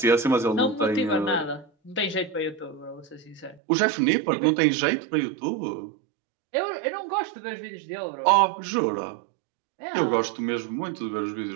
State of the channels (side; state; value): left; drops out; at 3.6 s